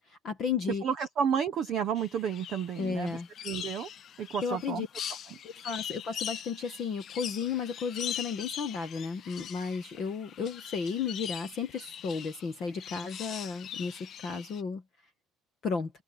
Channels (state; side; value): normal; both; correlation 0.51